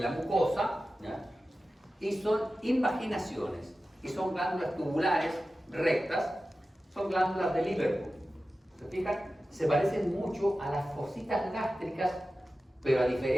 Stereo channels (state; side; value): normal; both; correlation 0.94